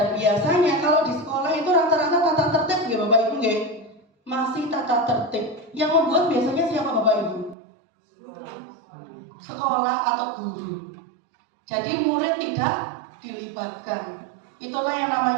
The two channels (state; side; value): drops out; left; at 7.6 s